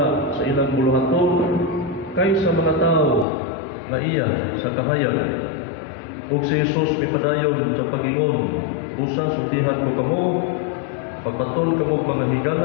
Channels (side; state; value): right; drops out; at 3.2 s